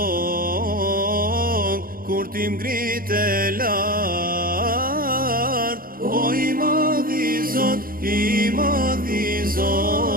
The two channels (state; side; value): late; left; 0.42 ms